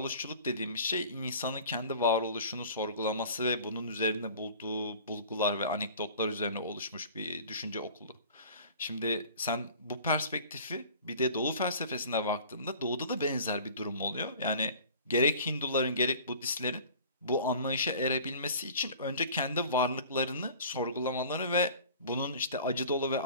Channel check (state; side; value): inverted; both; correlation -0.45